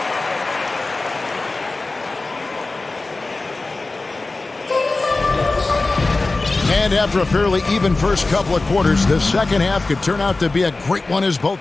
And after a fairly even first couple of quarters, the second half could turn out to be a great one as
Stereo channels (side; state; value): right; quieter; 3.3 dB